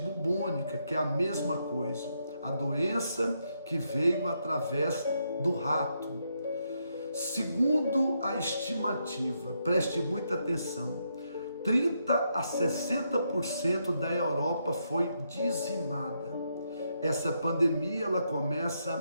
que é a mesma coisa, a doença que veio através do rato. Segundo a estimativa, preste muita atenção, 30 a 60% da Europa foi dizimada. Essa pandemia ela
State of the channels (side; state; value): both; inverted; correlation -0.79